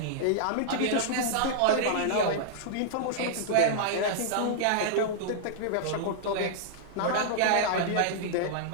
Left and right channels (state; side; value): different; both; correlation -0.01